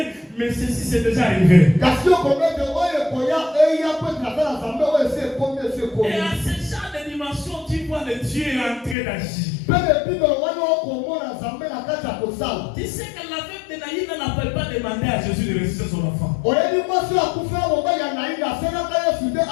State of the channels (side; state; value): right; drops out; at 9.0 s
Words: mais ceci c'est déjà arrivé. Et à ce genre de dimension, tu vois le Dieu en train d'agir. Tu sais que la veuve de Naïm n'appelle pas demander à Jésus de ressusciter son enfant.